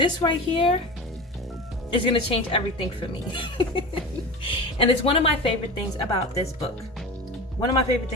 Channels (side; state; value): both; normal; correlation 0.29